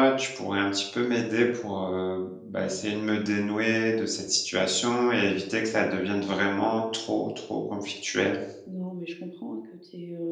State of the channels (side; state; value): both; identical; correlation 1.00